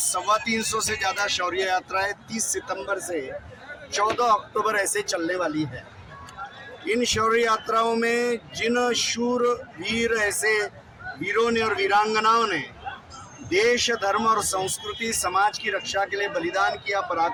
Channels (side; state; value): both; identical; correlation 1.00